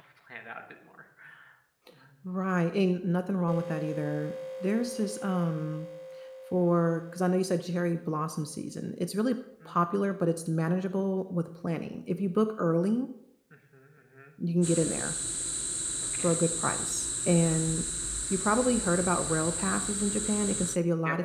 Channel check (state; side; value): identical; both; correlation 1.00